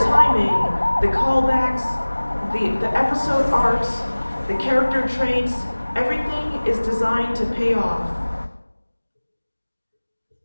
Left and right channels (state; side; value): inverted; both; correlation -1.00